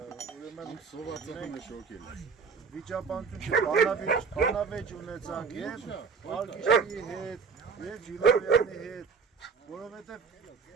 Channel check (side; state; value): left; quieter; 5.5 dB